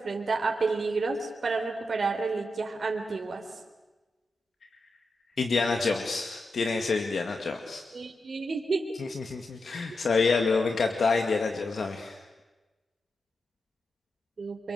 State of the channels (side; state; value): both; normal; correlation 0.87